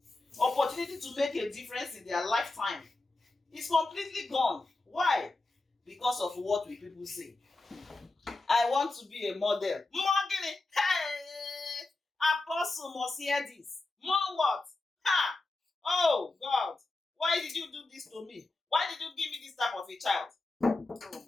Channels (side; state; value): right; quieter; 3.2 dB